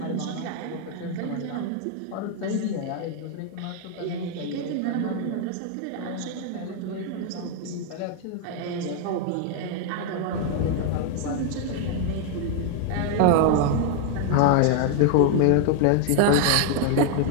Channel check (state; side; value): different; both; correlation 0.00